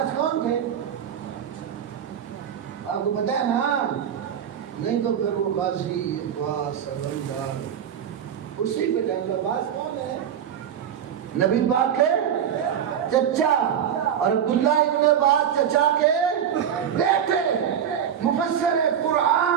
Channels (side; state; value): left; quieter; 8.9 dB